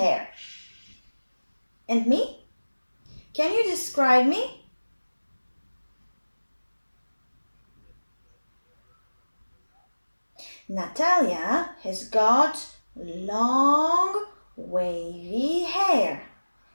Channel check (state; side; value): inverted; both; correlation -1.00